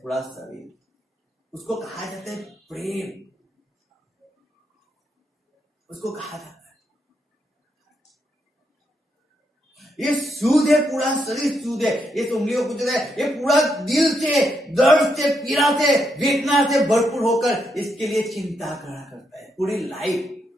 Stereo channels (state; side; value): normal; both; correlation 0.79